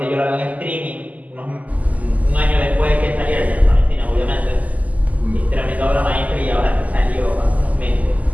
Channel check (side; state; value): left; late; 0.075 ms